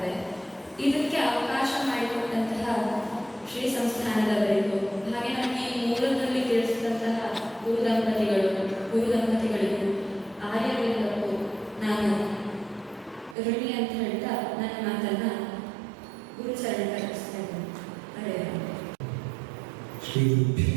ಇದಕ್ಕೆ ಅವಕಾಶ ಮಾಡಿಕೊಟ್ಟಂತಹ ಶ್ರೀ ಸಂಸ್ಥಾನದವರಿಗೂ, ಹಾಗೆ ನಮಗೆ ಈ ಮೂಲದಲ್ಲಿ ತಿಳಿಸಿದಂತಹ ಗುರು ದಂಪತಿಗಳಿಗೂ ಆರ್ಯವರಿಗೂ ನಾನು ಋಣಿ ಅಂತ ಹೇಳ್ತಾ ನನ್ನ ಮಾತನ್ನ ಗುರುಚರಣ ಕಲಿಸ್ತಾ ಇದ್ದೇನೆ. ಹರೇ ರಾಮ. ಶ್ರೀ ಗುರುಭ್ಯೋ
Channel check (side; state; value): left; drops out; at 13.4 s